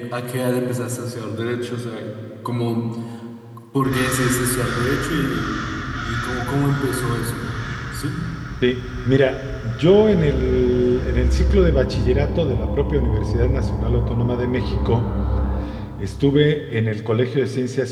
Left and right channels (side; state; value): both; identical; correlation 1.00